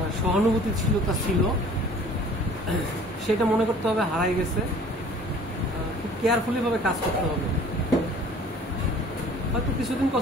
সহানুভূতি ছিল, তা ছিল, সেটা মনে করতে হবে হারাই গেছে। খুব কেয়ারফুলি ভাবে কাজ করতে হবে। হয়তো কিছুদিন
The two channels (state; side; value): normal; both; correlation 0.50